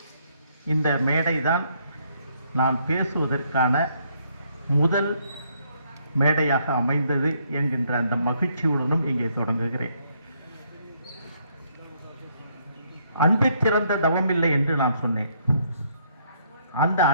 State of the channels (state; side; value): inverted; both; correlation -0.70